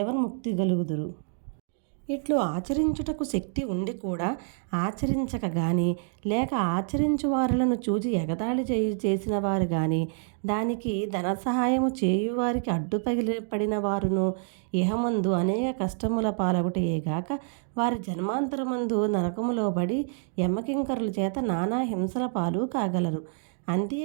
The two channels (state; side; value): silent; left; 60 dB below the other